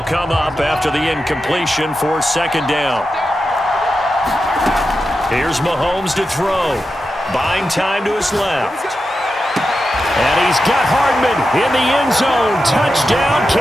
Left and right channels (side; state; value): both; normal; correlation 0.90